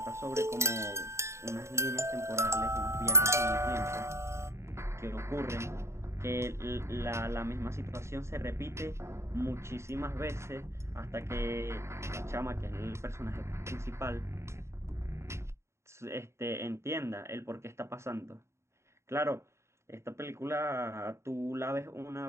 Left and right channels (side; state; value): left; late; 0.13 ms